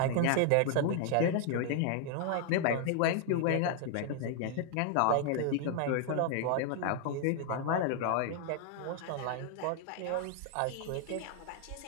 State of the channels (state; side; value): different; both; correlation 0.00